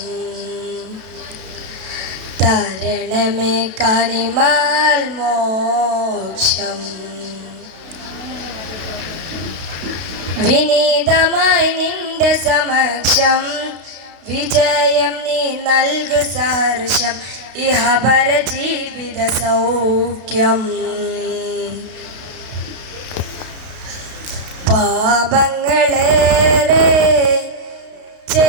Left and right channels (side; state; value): left; late; 32 ms